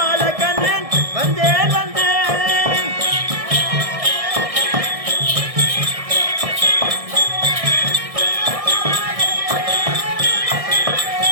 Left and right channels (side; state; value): left; late; 1.6 ms